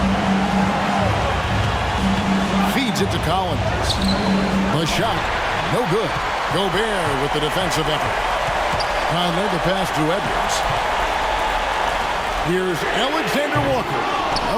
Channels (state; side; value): identical; both; correlation 1.00